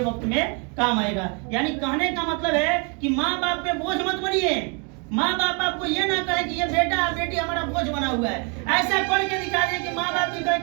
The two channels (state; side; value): quieter; left; 35.3 dB